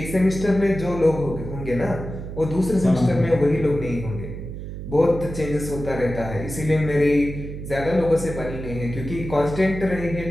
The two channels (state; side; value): noise; right; hum, 9 dB below the sound